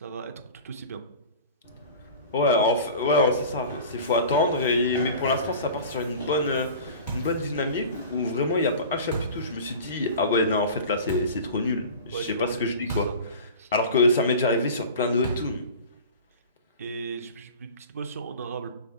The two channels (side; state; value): both; inverted; correlation -0.38